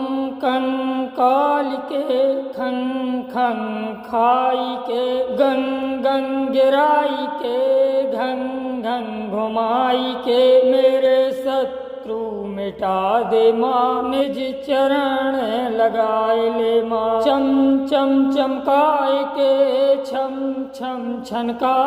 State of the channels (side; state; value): both; identical; correlation 1.00